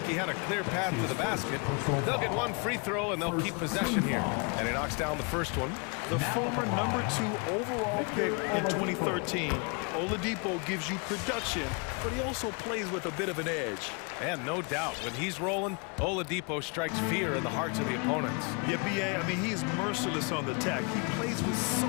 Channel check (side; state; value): right; quieter; 33.2 dB